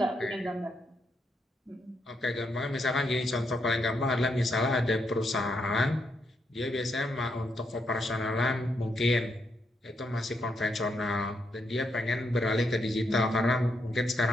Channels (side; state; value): both; normal; correlation 0.78